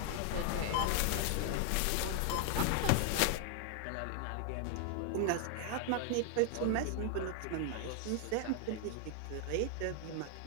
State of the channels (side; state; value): both; different; correlation 0.00